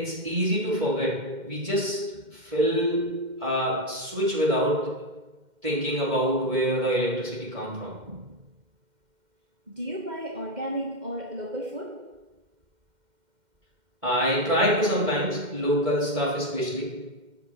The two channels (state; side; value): late; left; 2.1 ms